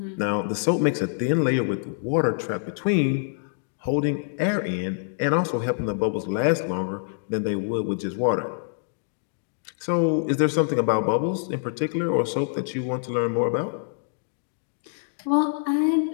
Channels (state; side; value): silent; right; digital silence